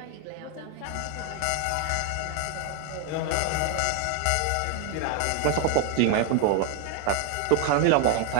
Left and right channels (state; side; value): different; both; correlation 0.01